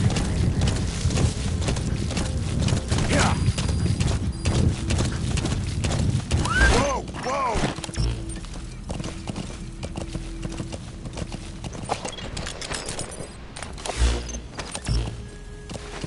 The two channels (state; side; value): identical; both; correlation 1.00